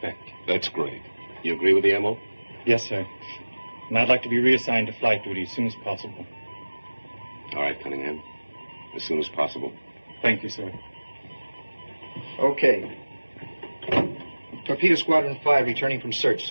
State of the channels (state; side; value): inverted; both; correlation -1.00